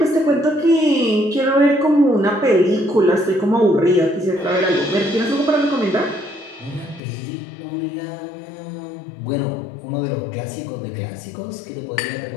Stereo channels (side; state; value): right; drops out; at 7.0 s